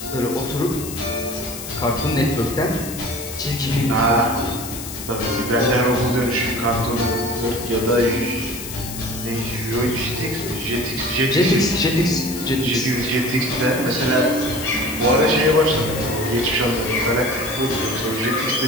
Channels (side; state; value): left; noise; hiss, 10 dB below the sound